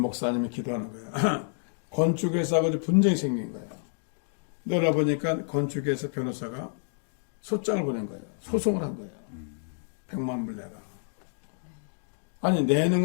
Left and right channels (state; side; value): silent; right; digital silence